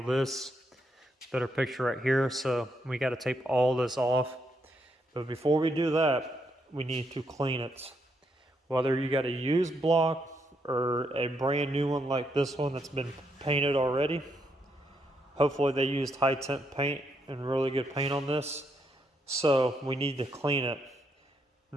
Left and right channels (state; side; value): normal; both; correlation 0.78